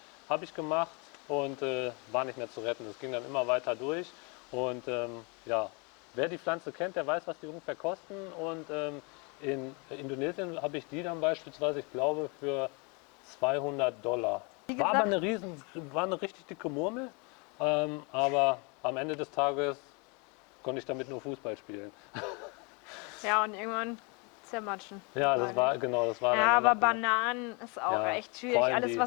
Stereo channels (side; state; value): right; quieter; 31.9 dB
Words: Habe ich gemacht und war nicht mehr zu retten. Das ging dann immer weiter durch. Und ja, wer die Pflanze kennt, der weiß, was die ungefähr kosten. Und in Indonesien habe ich die dann beispielsweise, ich glaube, für $200. War aber eine richtig dicke Murmel, aber am Ende des Tages konnte ich damit nur Fußball spielen. Ja, und irgendwann zermatschen. Ja, das war dann Ja, nur aber noch- Bananen ist auch Ja, echt schwierig. vor allem Alles, die-